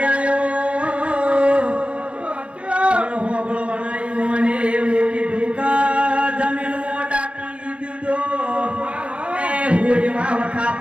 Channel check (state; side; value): late; left; 0.060 ms